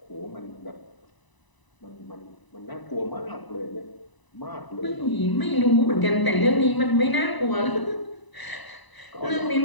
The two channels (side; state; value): right; late; 1.0 ms